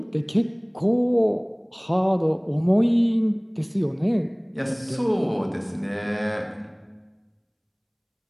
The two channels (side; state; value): both; identical; correlation 1.00